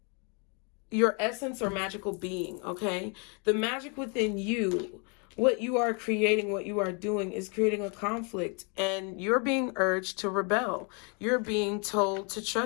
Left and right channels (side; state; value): right; quieter; 35.4 dB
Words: your essence or magical being, okay? The magic within you, what you are creating, what you are doing is creating a conflict, and you're being urged to rebel. You're being told to